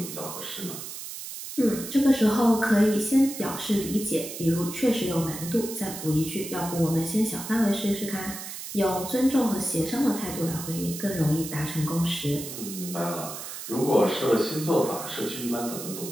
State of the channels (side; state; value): right; noise; hiss, 9 dB below the sound